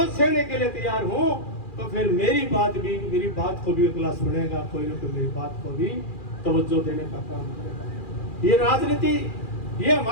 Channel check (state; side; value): late; right; 2.4 ms